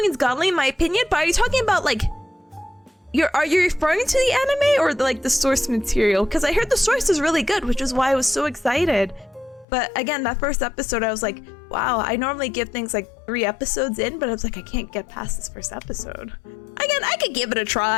is godly in my opinion, but are you talking about like are you referring to the anime or the source material? Because I heard the source is really good, which is why I was so excited. But again, that first episode, I was like, wow, I normally give things like 3 episodes in, but I was like, I can't get past this first episode. Again, I could give it a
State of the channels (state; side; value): drops out; right; at 9.7 s